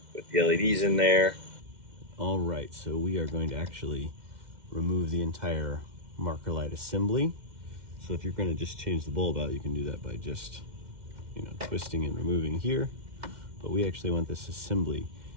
with the LEDs in there. All right, so we are going to actually remove the entire marker light assembly. So if you're going to just change the bulb out, you can do that by just, twisting and removing here. But we actually want this assembly.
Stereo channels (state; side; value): late; left; 2.1 ms